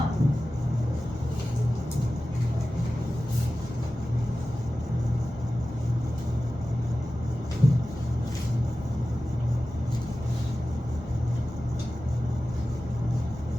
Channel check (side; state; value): both; normal; correlation 0.95